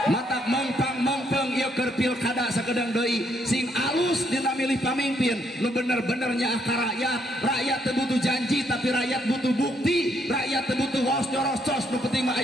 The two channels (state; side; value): normal; both; correlation 0.72